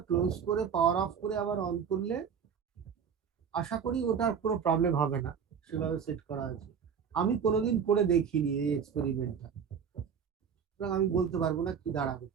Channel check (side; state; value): left; quieter; 7.1 dB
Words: ক্লোজ করে পাওয়ার অফ করে আবার অন করলে আশা করি ওটার কোনো প্রবলেম হবে না, সেভাবে সেট করা আছে। আমি কোনোদিন করে দেখিনি এই এক্সপেরিমেন্টটা, সুতরাং আমি বলতে পারবো না কি দাঁড়াবে